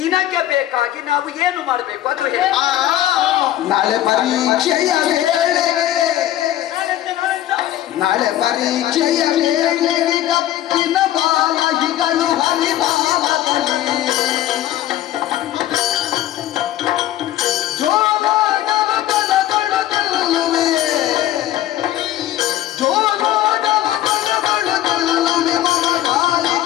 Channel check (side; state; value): right; quieter; 13.3 dB